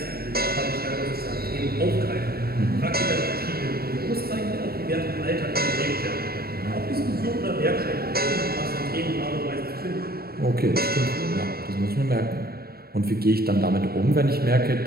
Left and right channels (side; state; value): left; late; 0.44 ms